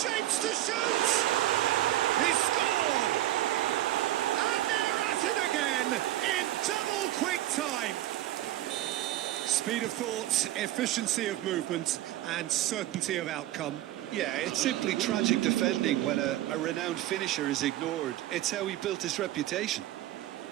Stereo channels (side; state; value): left; quieter; 14.1 dB